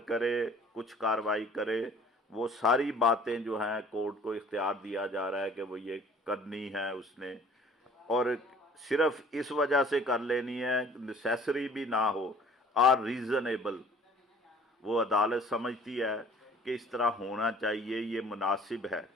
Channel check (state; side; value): normal; both; correlation 0.52